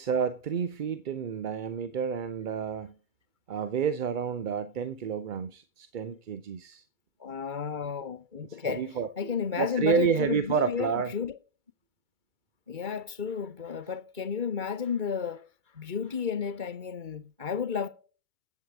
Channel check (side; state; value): left; late; 2.3 ms